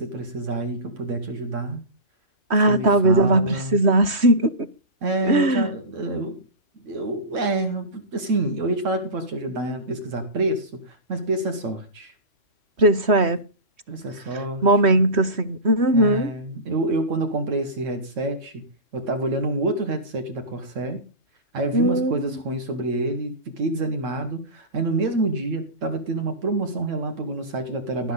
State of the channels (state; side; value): late; left; 3.1 ms